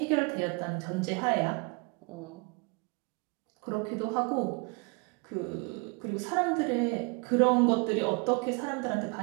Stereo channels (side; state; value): left; quieter; 31.5 dB